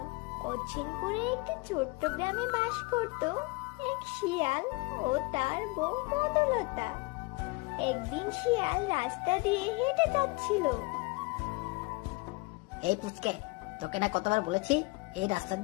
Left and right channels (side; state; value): right; quieter; 25.6 dB